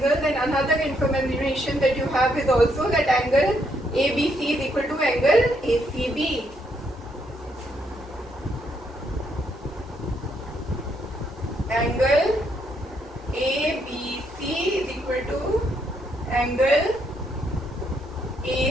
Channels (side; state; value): both; normal; correlation 0.74